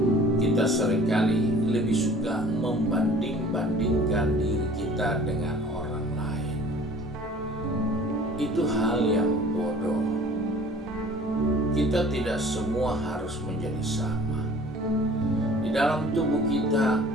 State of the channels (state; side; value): normal; both; correlation 0.49